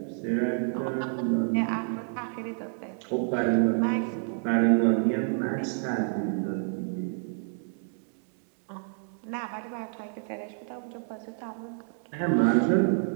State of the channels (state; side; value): silent; left; 55 dB below the other